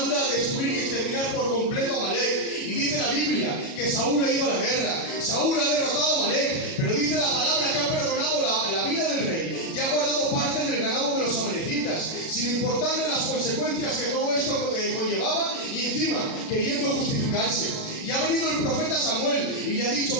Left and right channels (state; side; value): late; right; 37 ms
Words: a destruir y exterminar por completo a Amalek. Y dice la Biblia que Saúl ha ido a la guerra. Saúl ha derrotado a Amalek. Pero dice la palabra que ha perdonado la vida del rey y ha guardado parte del ganado de los amalecitas, sin importarle las consecuencias que todo esto conllevaba, y encima queriendo justificarse. Y ha venido el profeta Samuel y le ha dicho,